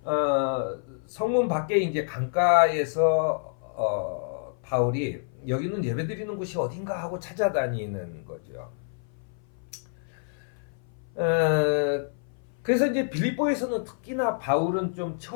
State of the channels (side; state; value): right; silent; 57 dB below the other